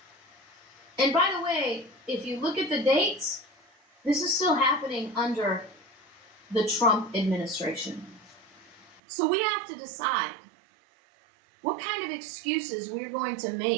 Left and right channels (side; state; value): left; drops out; at 9.0 s